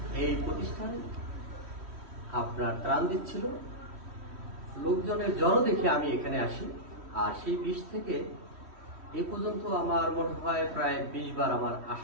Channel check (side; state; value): left; late; 3.1 ms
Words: এই প্রতিষ্ঠান আপনার ত্রাণ দিচ্ছিল, লোকজনের জড়ো দেখে আমি এখানে আসি। আর সেই 20 থেকে এ পর্যন্ত আমার মনে হয় প্রায় 20 বার আমার